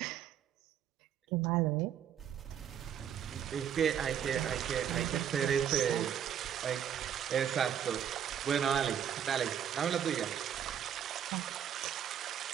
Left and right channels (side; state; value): left; quieter; 9.2 dB